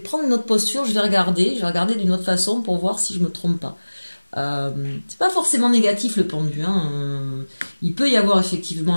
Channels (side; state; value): both; inverted; correlation -1.00